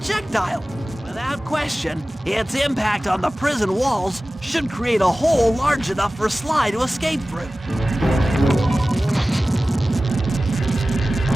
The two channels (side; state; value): both; normal; correlation 0.96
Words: Without question, its impact on the prison walls should create a hole large enough for Sly to escape through.